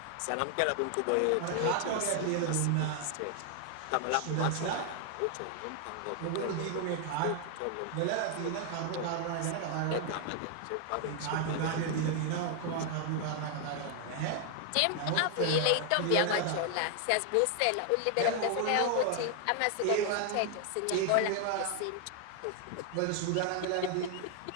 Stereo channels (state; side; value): different; both; correlation 0.00